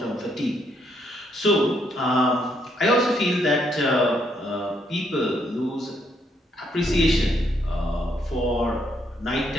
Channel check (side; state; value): both; normal; correlation 0.74